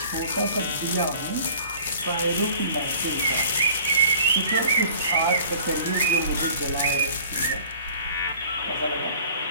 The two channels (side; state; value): both; inverted; correlation -0.48